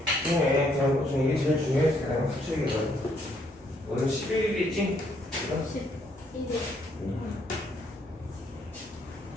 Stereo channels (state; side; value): normal; both; correlation 0.70